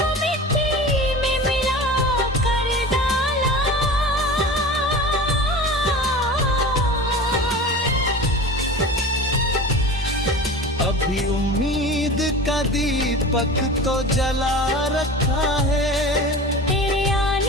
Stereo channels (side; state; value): both; normal; correlation 0.35